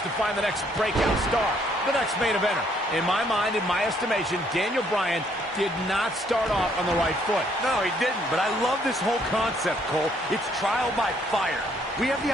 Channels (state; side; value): normal; both; correlation 0.67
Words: to find the next breakout star, the next main eventer. In my mind, in my estimation, Daniel Bryan did not start off on the right foot. No, he didn't, but I love this whole concept, Cole. It's trial by fire. We have